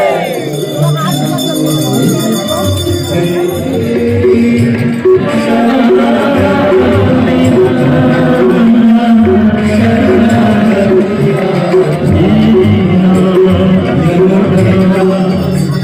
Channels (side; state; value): both; identical; correlation 1.00